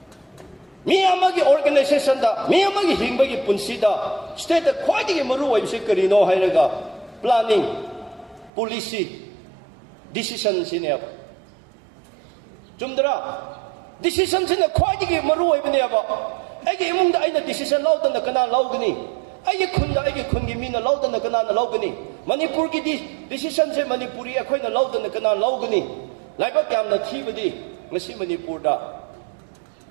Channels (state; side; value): drops out; left; at 8.5 s